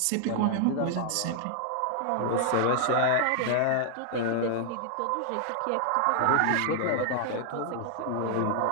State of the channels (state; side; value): different; both; correlation 0.00